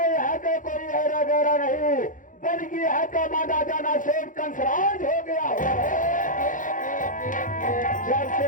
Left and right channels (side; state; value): right; late; 0.38 ms